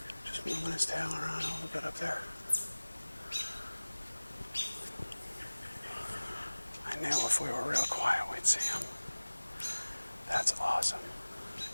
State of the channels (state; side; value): inverted; both; correlation -1.00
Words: Just moving his tail around a little bit up there. I knew if we were real quiet, we'd see him. That's awesome.